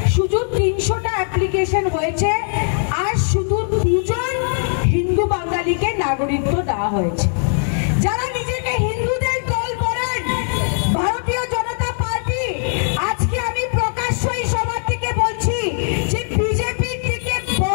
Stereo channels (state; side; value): silent; right; 58 dB below the other